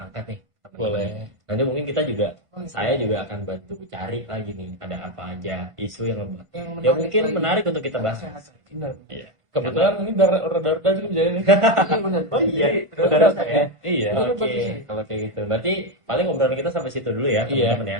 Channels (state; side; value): late; left; 1.5 ms